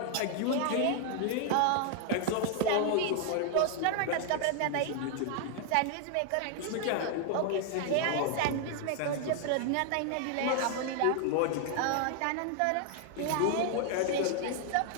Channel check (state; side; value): different; both; correlation 0.00